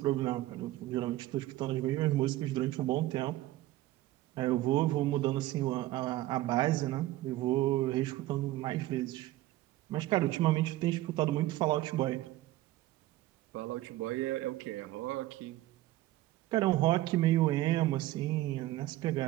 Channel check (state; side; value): quieter; left; 16.1 dB